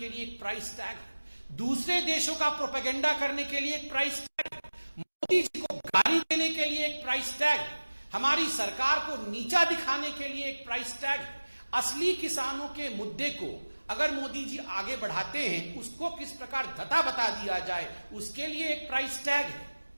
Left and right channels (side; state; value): both; inverted; correlation -1.00